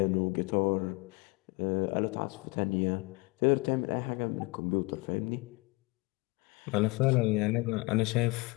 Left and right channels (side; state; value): right; quieter; 25.8 dB